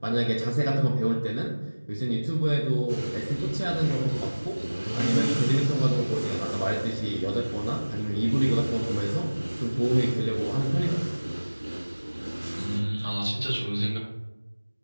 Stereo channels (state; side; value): inverted; both; correlation -1.00